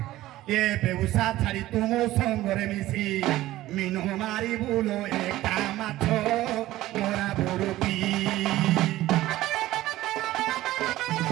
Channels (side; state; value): left; quieter; 15.8 dB